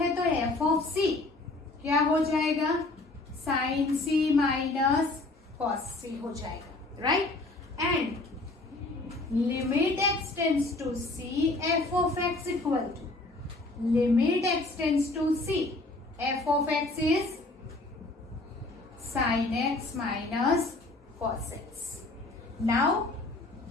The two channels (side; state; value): right; quieter; 3.0 dB